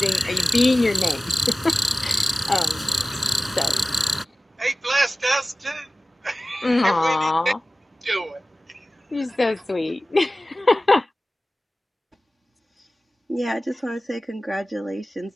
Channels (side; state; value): both; normal; correlation 0.96